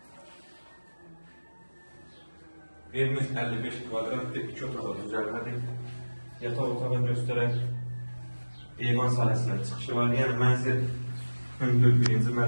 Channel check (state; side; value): inverted; both; correlation -1.00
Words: Evimiz 55 kvadratdır, 2 otağı düzəlmədir. Yataq otağı göstərək, eyvan sahəsindən çıxışı var, yəni mənzil hündür 1-ci